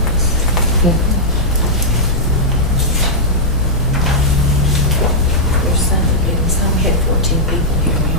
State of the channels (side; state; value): both; normal; correlation -0.09